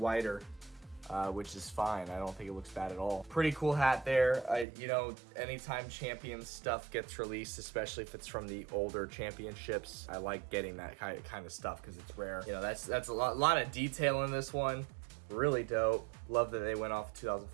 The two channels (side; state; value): left; drops out; at 4.7 s